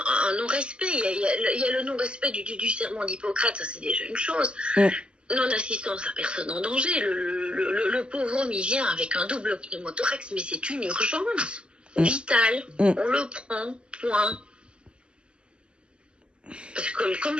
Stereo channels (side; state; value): left; late; 0.052 ms